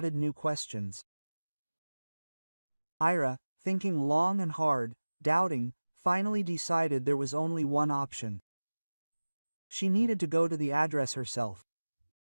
new questions. Ira, thinking long and hard, doubting, finally decided there was only one option. She needed to go to the address herself.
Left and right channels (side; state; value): both; inverted; correlation -1.00